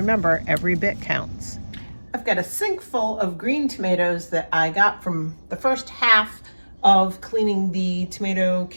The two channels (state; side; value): inverted; both; correlation -1.00